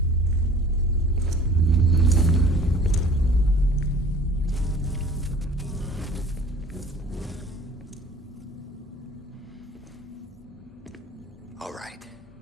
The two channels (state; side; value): normal; both; correlation 0.47